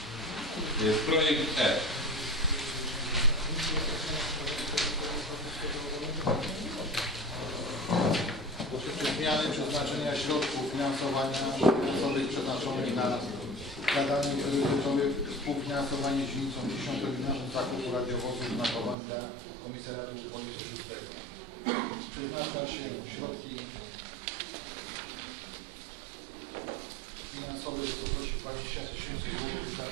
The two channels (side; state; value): left; drops out; at 18.9 s